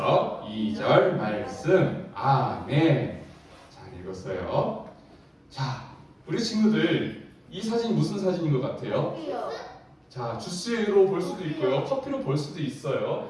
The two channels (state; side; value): identical; both; correlation 1.00